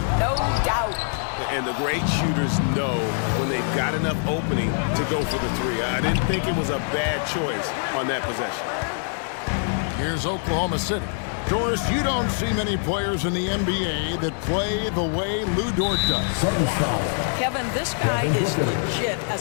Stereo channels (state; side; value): silent; right; digital silence